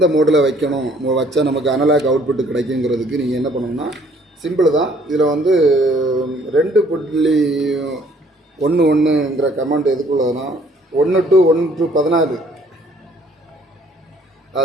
மோடில் வைக்கணும் வச்சா நமக்கு அனலாக் அவுட்புட் கிடைக்குங்கிறதுக்கு நீங்கள் என்ன பண்ணணும்னா சிம்பிள் தான். இதில் வந்து 2.11ங்கிற கமாண்ட் எதுக்குள்ளதுன்னா 1 to 16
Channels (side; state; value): both; normal; correlation 0.60